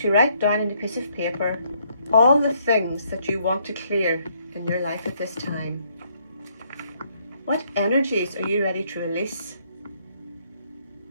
to write down on a piece of paper all the things that you want to clear in your life at this time. What energies are you ready to release?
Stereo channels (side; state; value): both; inverted; correlation -0.70